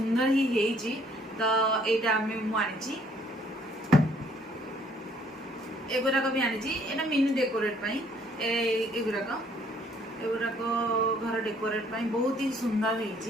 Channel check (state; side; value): normal; both; correlation 0.63